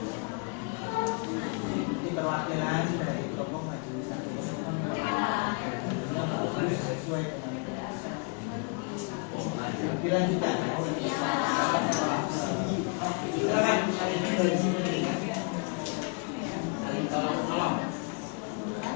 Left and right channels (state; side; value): quieter; right; 36.4 dB